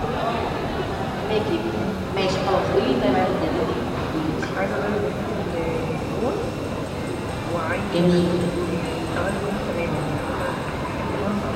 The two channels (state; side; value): identical; both; correlation 1.00